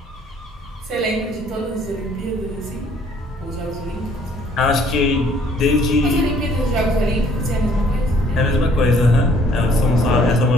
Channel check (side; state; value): both; normal; correlation 0.61